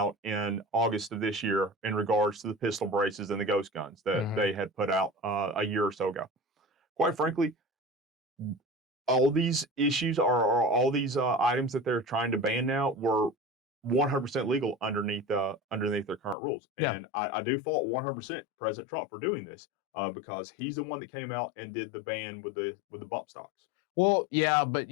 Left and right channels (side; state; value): right; drops out; at 16.4 s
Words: in August of this year in regards to the pistol braces and the ghost guns that they had put out a year or so ago. Quite frankly, all these issues are all these items that they're trying to ban now were 100% legal underneath their current rules. And I do fault 100% President Trump for doing this because he's the one that came out and did the ban with the bump stocks. Well, yeah, but